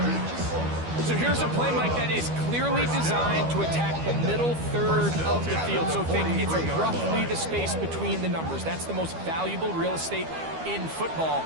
So here's a play, Mike, that is clearly designed to attack the middle 3rd of the field. So think it's roughly the space between the numbers. That's the most valuable real estate in football.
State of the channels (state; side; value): late; left; 12 ms